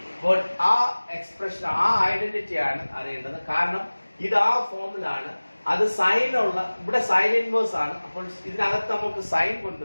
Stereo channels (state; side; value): inverted; both; correlation -1.00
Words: അപ്പോൾ ആ എക്സ്പ്രഷൻ, ആ ഐഡന്റിറ്റി ആണ് അറിയേണ്ടത്. കാരണം ഇത് ആ ഫോമിലാണ്, അത് സൈനുള്ള, ഇവിടെ സൈൻ ഇൻവേഴ്സ് ആണ്. അപ്പോൾ ഇതിനകത്ത് നമുക്ക് സൈൻ